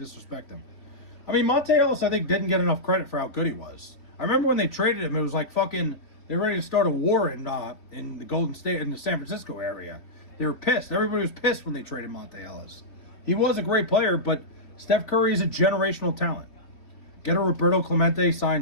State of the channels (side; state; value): right; late; 3.3 ms